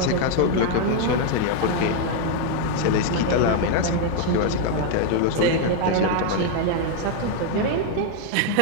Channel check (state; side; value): different; both; correlation 0.00